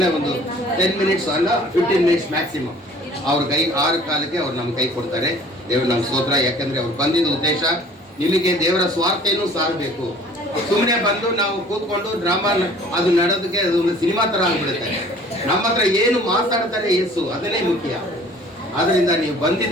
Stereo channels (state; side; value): normal; both; correlation 0.51